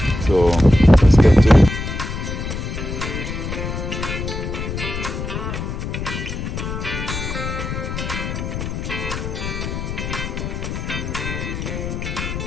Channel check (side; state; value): left; noise; rumble, 5 dB below the sound